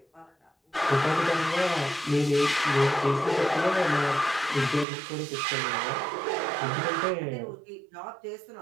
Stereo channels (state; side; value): drops out; left; at 4.9 s